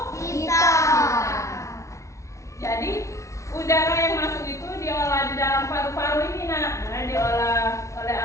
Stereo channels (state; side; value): late; right; 0.14 ms